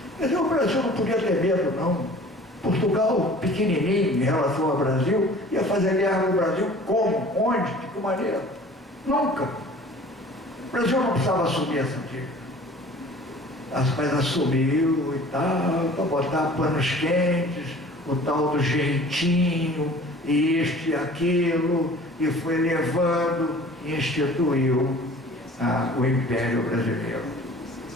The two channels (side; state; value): both; normal; correlation 0.46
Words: Mas o Brasil não podia ter medo, não. Portugal, pequenininho em relação ao Brasil, ia fazer guerra no Brasil como? Onde? De que maneira? Nunca. O Brasil não precisava assumir essa dívida. Mas assumiu e tal, para botar panos quentes, o tal do jeitinho, e isto e aquilo, e foi levando e instituiu o Império Brasileiro.